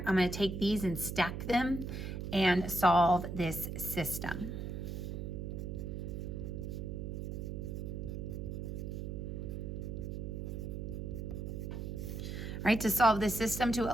I'm going to take these and stack them and solve this system. All right, to solve this system, to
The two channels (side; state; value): right; noise; hum, 5 dB below the sound